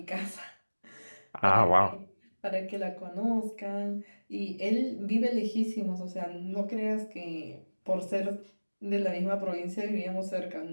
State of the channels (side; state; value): both; inverted; correlation -1.00